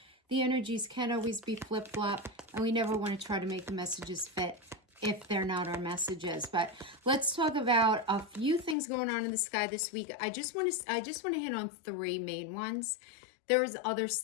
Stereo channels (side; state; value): right; drops out; at 8.8 s